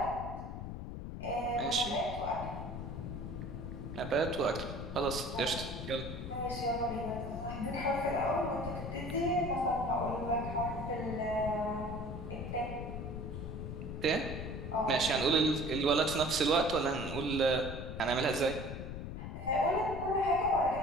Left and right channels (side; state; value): left; noise; rumble, 7 dB below the sound